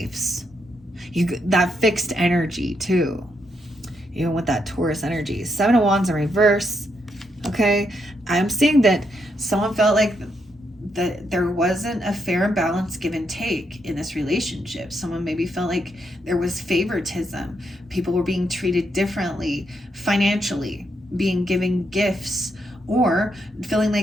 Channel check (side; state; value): both; normal; correlation 0.79